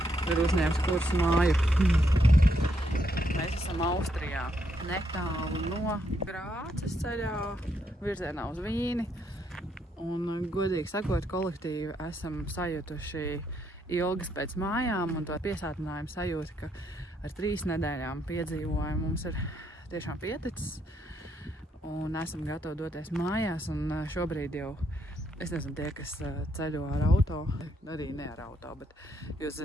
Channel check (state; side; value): normal; both; correlation 0.76